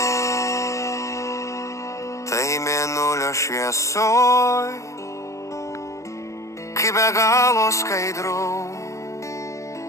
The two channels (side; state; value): right; late; 0.15 ms